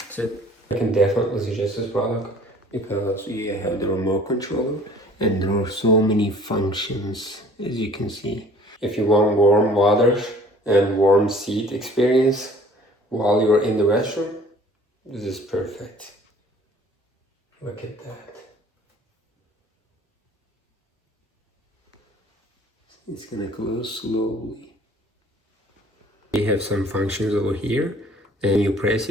it. I can definitely suggest this product because you have the remote controller and there are so many functions, as you can see. If you want warm water and warm seat experience while you're in the restroom, this is perfect. Look at that. It's gonna close slowly. We have some functions over here. Then you press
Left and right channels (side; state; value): both; normal; correlation 0.52